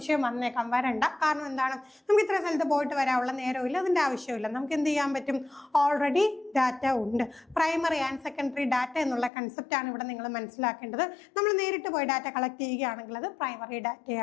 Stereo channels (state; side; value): drops out; right; at 9.3 s